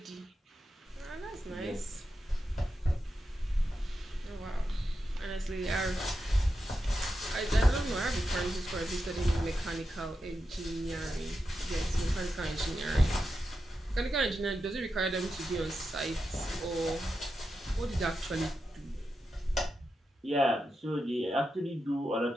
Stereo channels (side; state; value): both; normal; correlation 0.88